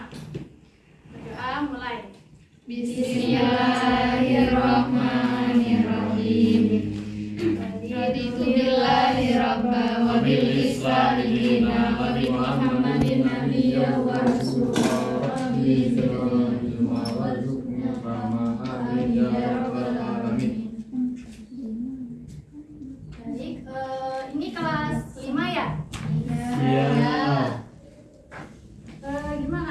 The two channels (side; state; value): both; identical; correlation 1.00